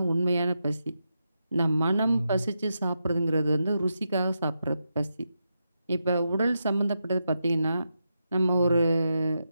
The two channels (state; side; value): inverted; both; correlation -0.86